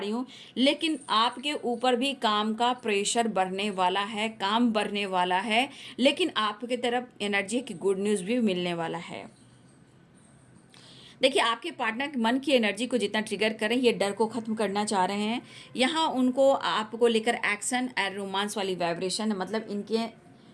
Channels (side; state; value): both; identical; correlation 1.00